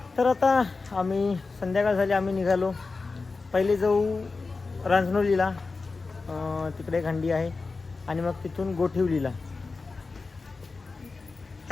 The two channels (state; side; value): quieter; right; 4.1 dB